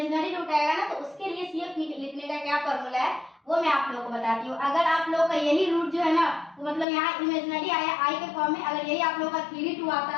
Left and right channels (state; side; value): drops out; right; at 6.9 s